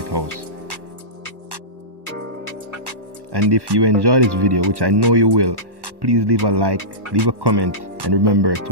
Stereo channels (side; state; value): left; late; 1.1 ms